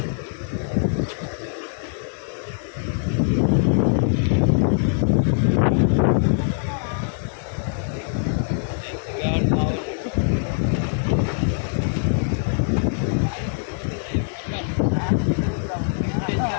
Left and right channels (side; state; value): right; silent; 63 dB below the other